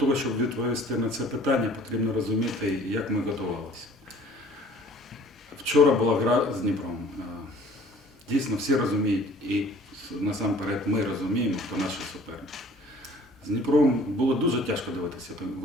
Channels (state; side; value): normal; both; correlation 0.52